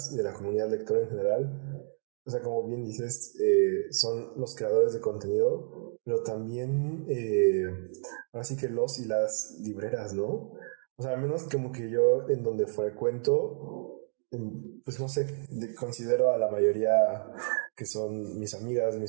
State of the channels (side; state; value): left; silent; digital silence